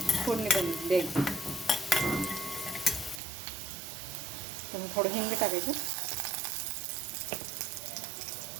फोडणी द्यायची. तर थोडं हिंग टाकायचं.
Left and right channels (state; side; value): drops out; left; at 3.2 s